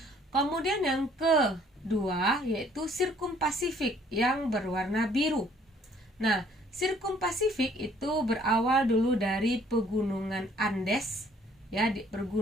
Kemudian yang kedua yaitu Sirkum Pasifik yang berwarna biru. Nah, Sirkum Pasifik itu berawal dulu dari pegunungan Andes ya, di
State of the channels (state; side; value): normal; both; correlation 0.60